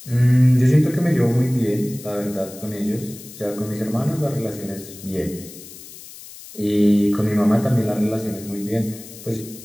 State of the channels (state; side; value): noise; left; hiss, 17 dB below the sound